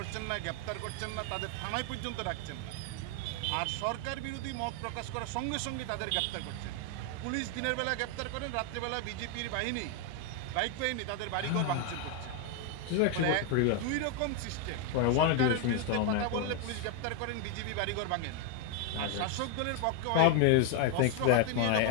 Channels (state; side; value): different; both; correlation 0.01